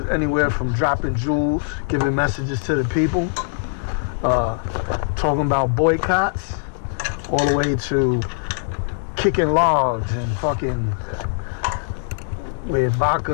anywhere from dropping jewels, giving messages to the people, talking about boycotts, all the way to kicking logs and fucking with vodka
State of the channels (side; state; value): right; silent; digital silence